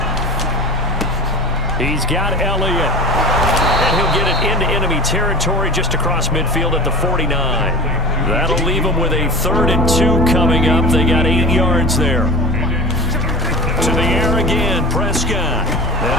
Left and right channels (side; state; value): both; normal; correlation 0.35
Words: He's got Elliott. And he'll get it into enemy territory just across midfield at the 49. That'll leave him with a 3rd and 2 coming up. They got 8 yards there. To the air again, Prescott.